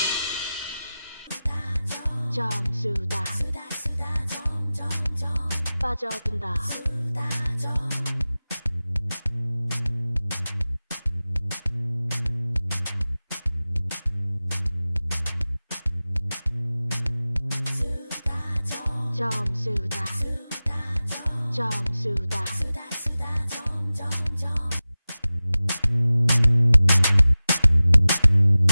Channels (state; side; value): inverted; both; correlation -0.96